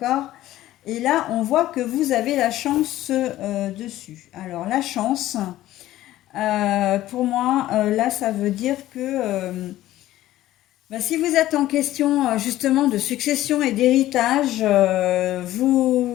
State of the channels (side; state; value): right; quieter; 14.8 dB